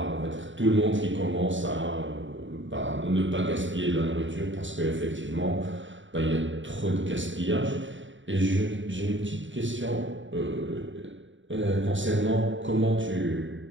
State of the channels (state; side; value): late; left; 0.55 ms